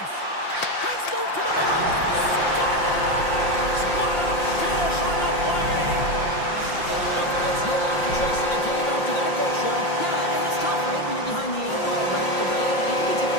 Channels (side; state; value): right; late; 5.7 ms